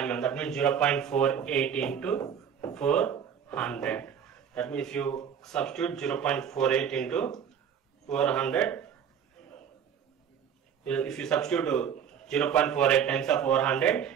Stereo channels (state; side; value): quieter; left; 8.1 dB